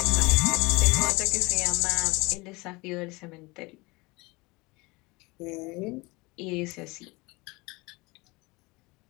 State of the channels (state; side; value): quieter; right; 24.2 dB